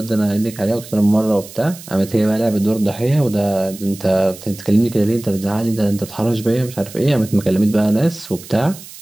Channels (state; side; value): noise; right; hiss, 17 dB below the sound